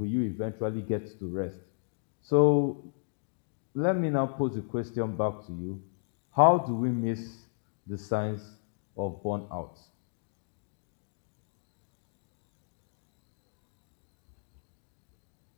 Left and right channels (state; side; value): silent; right; digital silence